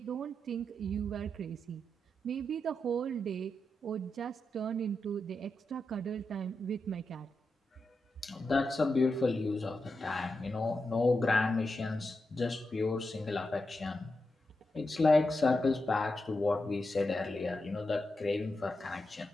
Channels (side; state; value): both; normal; correlation 0.87